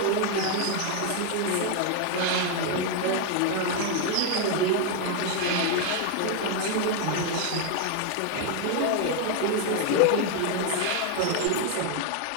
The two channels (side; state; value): both; different; correlation 0.01